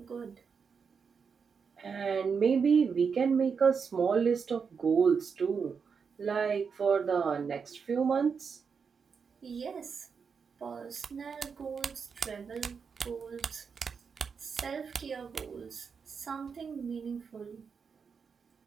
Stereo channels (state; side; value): quieter; left; 5.9 dB